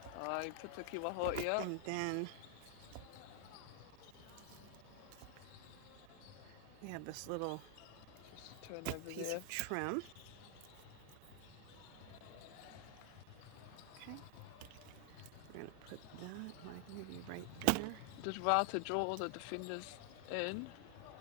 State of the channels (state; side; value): different; both; correlation 0.00